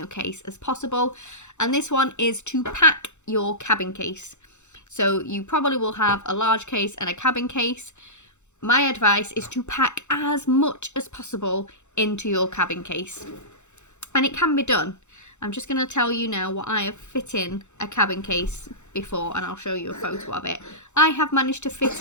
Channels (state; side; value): late; right; 0.83 ms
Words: case as possible. And this one is to pack your cabin case. So you probably will have a large case and a cabin case. My advice is to pack as much as possible into your cabin case. And it can be done. I'm just going to tell you now what I have fit in a cabin case before, and I'll show you a photo of it. I have managed to fit